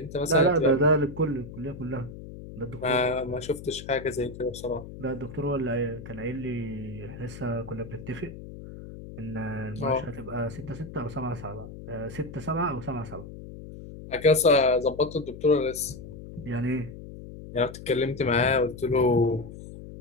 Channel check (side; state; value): left; noise; hum, 13 dB below the sound